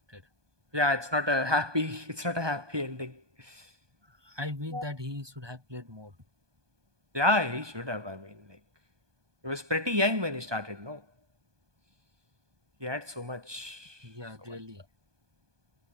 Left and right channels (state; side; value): late; left; 1.2 ms